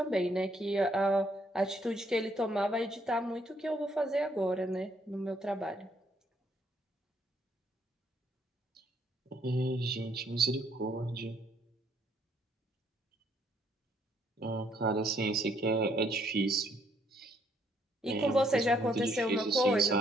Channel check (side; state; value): both; normal; correlation 0.69